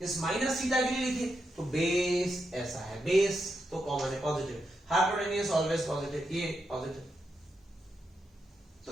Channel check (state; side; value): normal; both; correlation 0.84